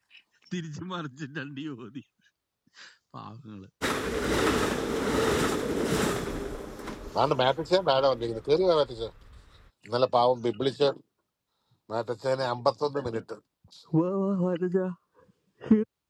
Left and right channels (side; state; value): both; identical; correlation 1.00